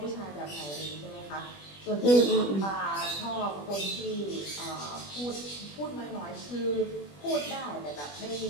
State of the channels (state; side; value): late; right; 21 ms